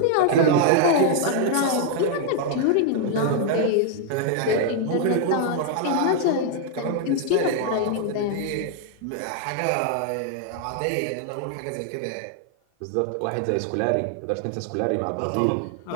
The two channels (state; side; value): different; both; correlation 0.00